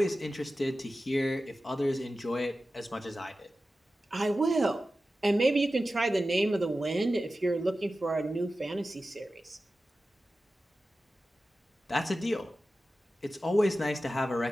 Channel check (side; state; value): both; normal; correlation 0.94